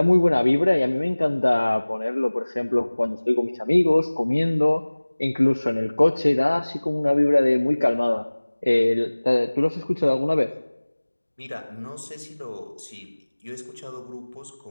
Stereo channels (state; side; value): inverted; both; correlation -1.00